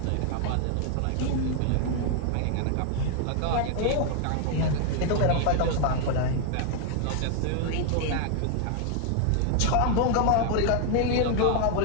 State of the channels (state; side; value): different; both; correlation 0.00